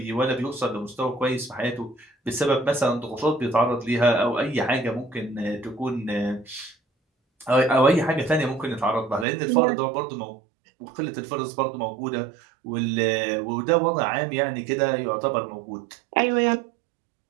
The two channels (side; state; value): left; drops out; at 9.2 s